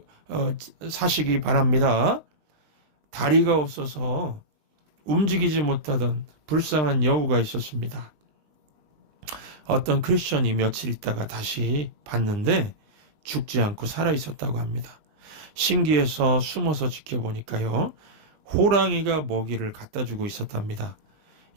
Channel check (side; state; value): left; late; 20 ms